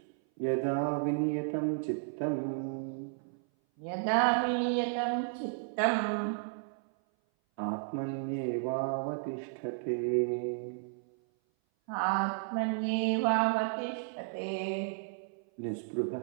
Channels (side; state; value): left; silent; 56 dB below the other